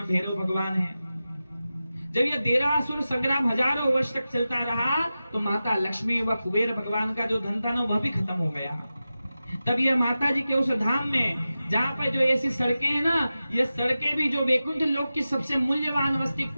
भैरव भगवान है। जब यह देरासुर संग्राम हजारों वर्ष तक चलता रहा तो माता लक्ष्मी व कुबेर भगवान का जो धन था ना, वह भी खत्म हो गया। तब यह माता जी के उस धाम में, जहाँ पर जो ऐसी सड़कें हैं ना, ये सड़कें भी जो वैकुंठ लोक की सबसे मूल्यवान वस्तु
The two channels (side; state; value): both; inverted; correlation -0.94